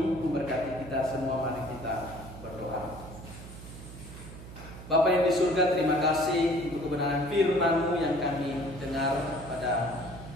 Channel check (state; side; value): noise; right; hum, 14 dB below the sound